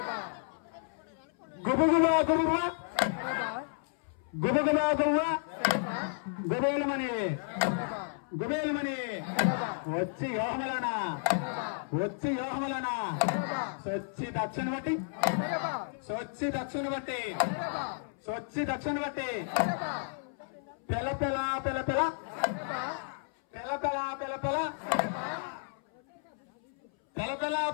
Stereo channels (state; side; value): silent; right; 56 dB below the other